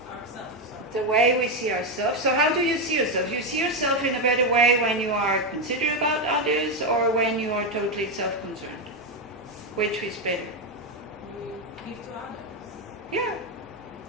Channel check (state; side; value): normal; both; correlation 0.07